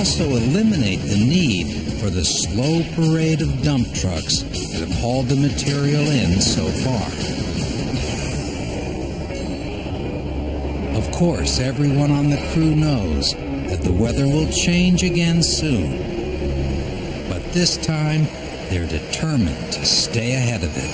eliminate the need for the slow parade of dump trucks that have hauled the material in so far. Of course, everyone on the crew knows that the weather will change again soon. But this time, they're determined to stay ahead of it.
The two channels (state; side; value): identical; both; correlation 1.00